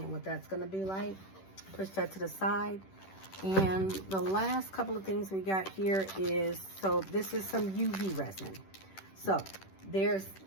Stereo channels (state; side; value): late; right; 10 ms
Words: what that's going to be like. Push that to the side. And the last couple of things we got here is, so this is some UV resin. So